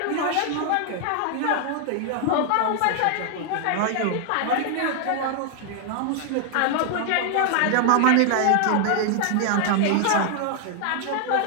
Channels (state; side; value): different; both; correlation 0.00